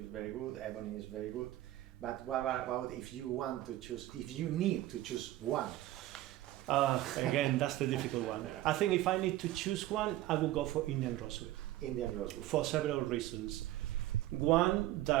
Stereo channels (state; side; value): quieter; left; 15.3 dB